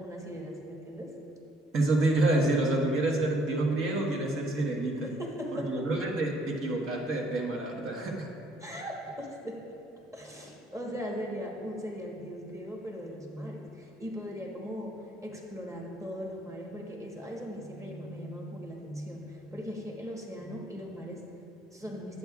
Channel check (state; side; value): normal; both; correlation 0.65